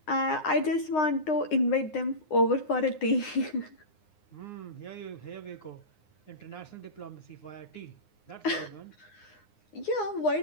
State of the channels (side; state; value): right; late; 9.7 ms